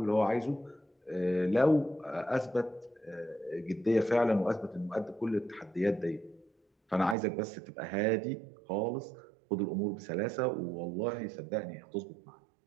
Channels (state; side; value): drops out; left; at 7.2 s